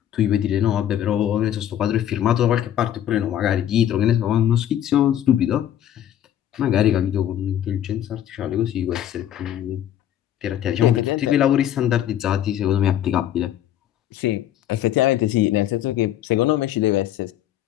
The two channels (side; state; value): right; quieter; 11.2 dB